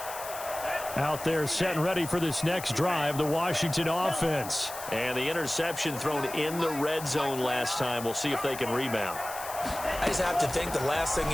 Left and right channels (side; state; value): left; noise; hiss, 11 dB below the sound